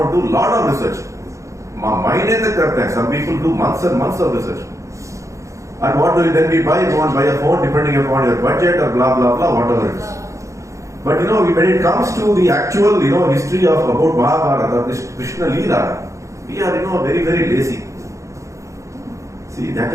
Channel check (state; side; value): late; left; 0.15 ms